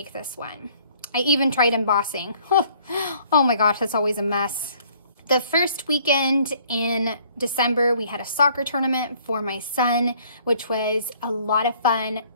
this one. I even tried embossing. Oh my gosh, that's always a mess. The first weekend in December, we had a soccer tournament for my son, which was a lot of fun,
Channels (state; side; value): inverted; both; correlation -0.59